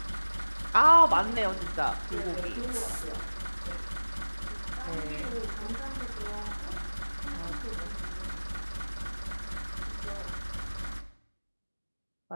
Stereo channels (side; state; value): both; inverted; correlation -1.00